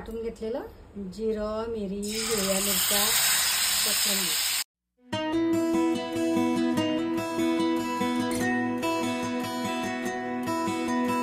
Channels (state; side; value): identical; both; correlation 1.00